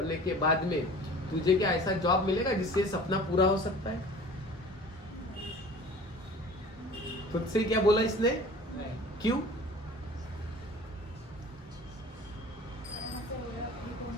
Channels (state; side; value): normal; both; correlation 0.44